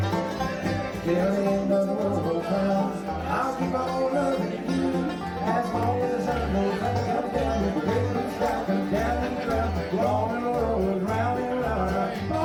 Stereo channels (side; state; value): both; identical; correlation 1.00